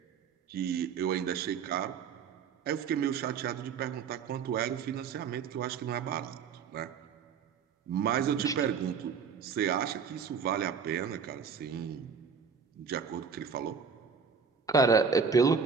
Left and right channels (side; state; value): left; quieter; 6.1 dB